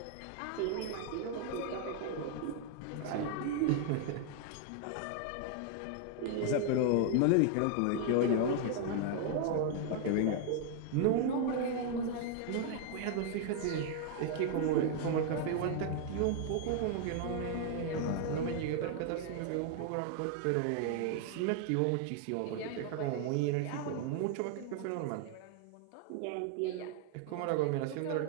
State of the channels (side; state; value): both; different; correlation 0.00